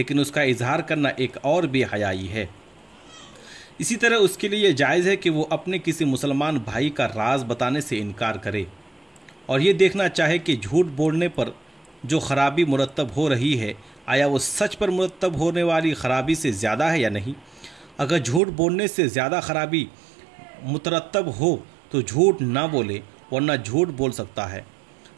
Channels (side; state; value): left; drops out; at 18.4 s